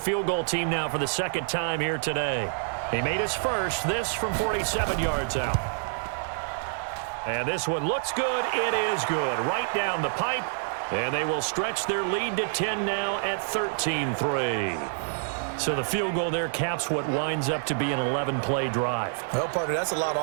goal team now for the 2nd time here today. He made his first, this from 47 yards out. And this one looks good. It is good. Right down the pipe. And they will stretch their lead to 10 now at 13-3. So the field goal there caps what winds up to be an 11-play drive. Well, partner, that's a lot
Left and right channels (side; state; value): left; silent; digital silence